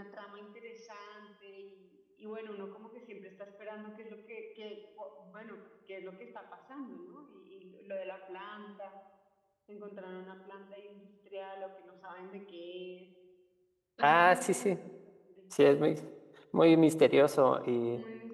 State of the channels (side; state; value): both; identical; correlation 1.00